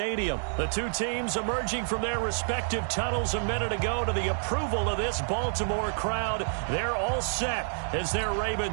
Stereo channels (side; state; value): left; silent; digital silence